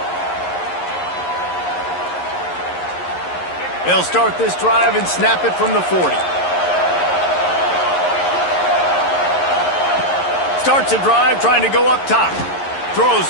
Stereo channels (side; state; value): right; late; 11 ms